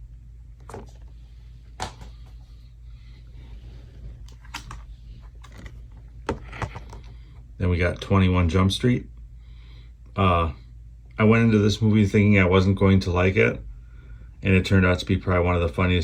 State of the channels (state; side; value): identical; both; correlation 1.00